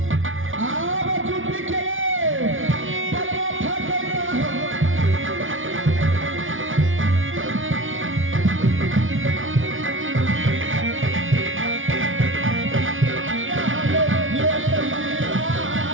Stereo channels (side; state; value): left; late; 0.57 ms